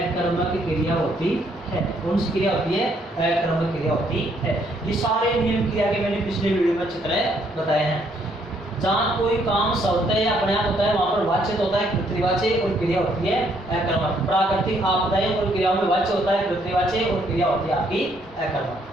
क्रिया होती है। कौन सी क्रिया होती है? अकर्मक क्रिया होती है। ये सारे नियम क्रिया के मैंने पिछले वीडियो में चित्र बताए हैं। जहाँ कोई काम शब्द या अपने आप होता है वहां पर वाच्य होता है पृथ्वीवाची और क्रिया होती है अकर्मक। प्राकृतिक आपदाएं और क्रियाओं में वाच्य होता है पृथ्वीवाची और क्रिया होती है आपकी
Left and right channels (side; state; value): both; normal; correlation 0.69